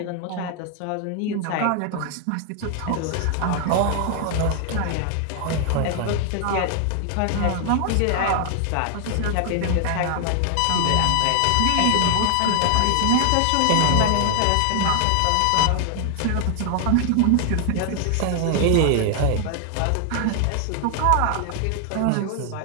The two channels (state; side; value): different; both; correlation 0.00